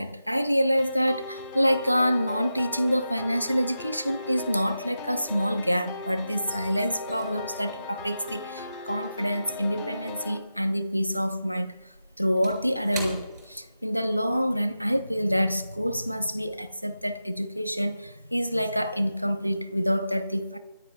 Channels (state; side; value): inverted; both; correlation -0.91